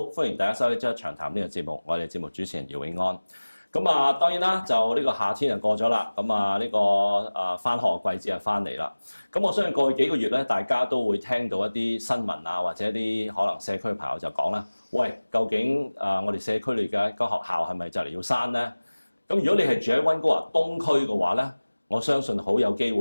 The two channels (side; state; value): both; inverted; correlation -1.00